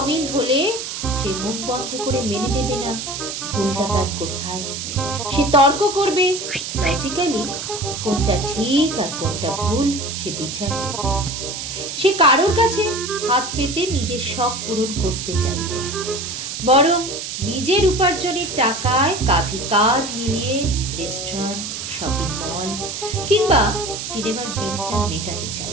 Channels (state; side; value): noise; right; hiss, 6 dB below the sound